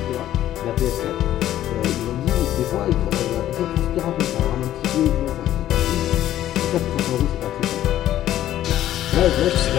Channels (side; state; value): right; quieter; 12.7 dB